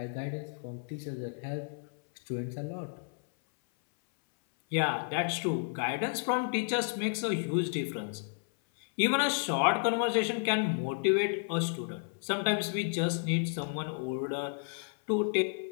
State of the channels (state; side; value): silent; right; 56 dB below the other